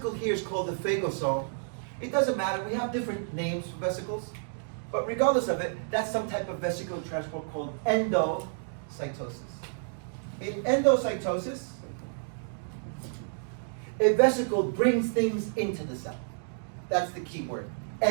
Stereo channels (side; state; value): left; silent; digital silence